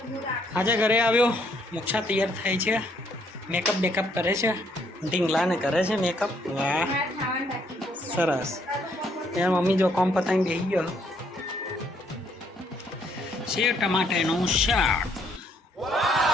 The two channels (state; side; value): normal; both; correlation 0.69